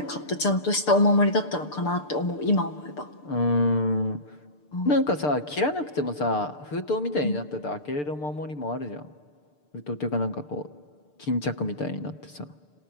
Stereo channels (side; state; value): right; late; 6.7 ms